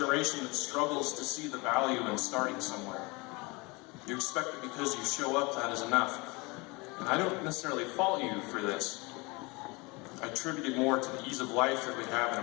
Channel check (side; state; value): right; quieter; 26.3 dB